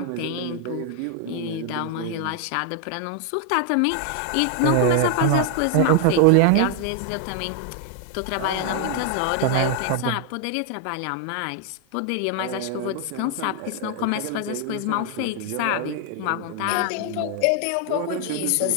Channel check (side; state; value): both; different; correlation 0.00